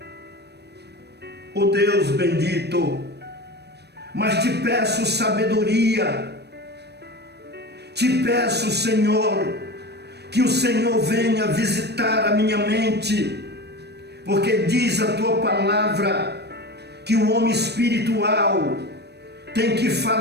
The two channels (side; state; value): left; late; 0.49 ms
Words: ó Deus bendito, mas te peço sabedoria, te peço, Senhor, que o Senhor venha visitar a minha mente, porque diz a tua palavra que o homem espiritual tem que